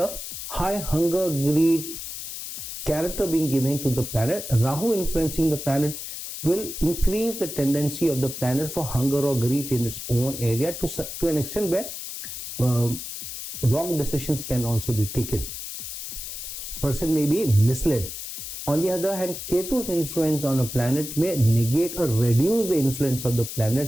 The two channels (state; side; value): noise; left; hiss, 8 dB below the sound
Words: high hunger, greed, character being given to the planet, Rahu influencing the planet will increase the tendency of the planet for hunger or greed in its own area to an extent where wrong decisions can also be taken. Person may be misled. On the other hand, Ketu's influence on a planet may negate or reduce the influence of the